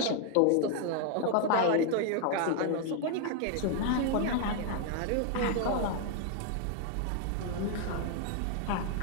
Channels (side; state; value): both; different; correlation 0.00